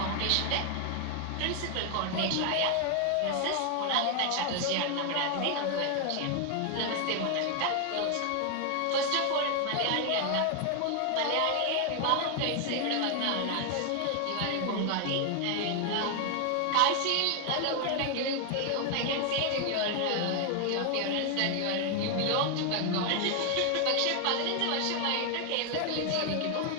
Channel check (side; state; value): both; different; correlation 0.00